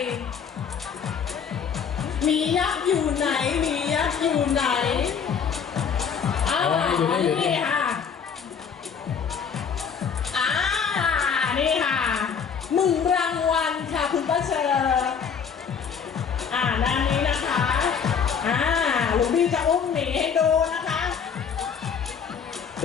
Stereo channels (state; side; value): quieter; right; 6.8 dB